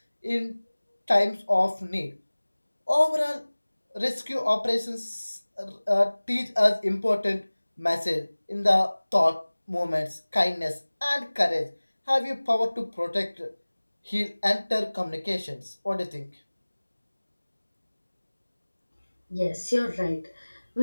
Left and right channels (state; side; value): inverted; both; correlation -1.00